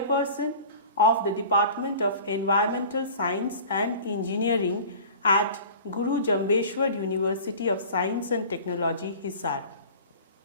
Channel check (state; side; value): inverted; both; correlation -0.41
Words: of the Department of Environmental Science and Engineering at Guru Jambeshwar University of Science and Technology, Hisar.